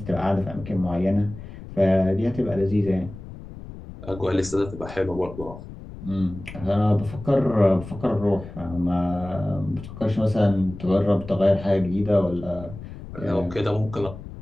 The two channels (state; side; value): noise; left; rumble, 13 dB below the sound